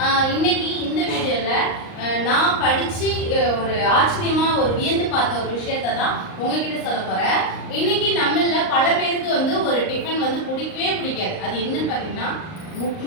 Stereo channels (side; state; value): right; late; 38 ms